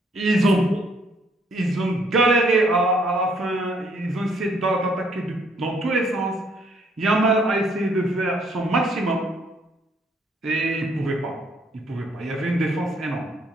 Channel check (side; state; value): both; normal; correlation 0.67